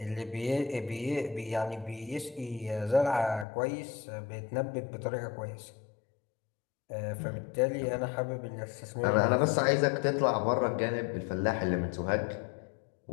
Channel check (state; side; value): drops out; right; at 3.5 s